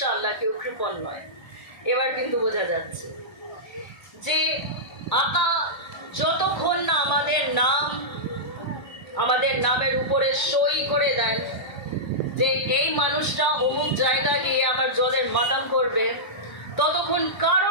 কেউ কৃপণ নয়। এবার কিন্তু বোঝা যাচ্ছে যে আকা যতক্ষণ না আমাদের নামের উপরে সই করে দেন যে এই মানুষটা অমুক জায়গা গিয়ে আমার জলের মাদাম করবে, ততক্ষণ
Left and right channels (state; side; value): late; right; 1.0 ms